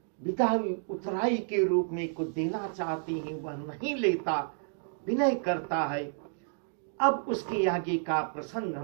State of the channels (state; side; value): silent; left; digital silence